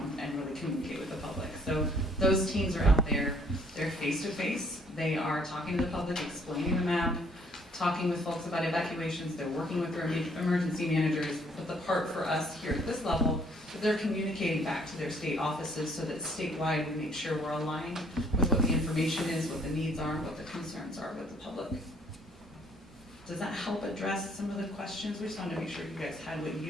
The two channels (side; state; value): both; normal; correlation 0.63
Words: and really communicate with the public. So those teams are out there, they're face-to-face, they are talking to the public, explaining the map, talking with folks about evacuations, they're working with their emergency managers, but the part for us here at this level is they're communicating back to their state offices so that statewide we make sure we're aligned with what the information is, what the needs are, what the concerns are with the public. Does that help address some of the questions? We just wanted to make sure you guys had what you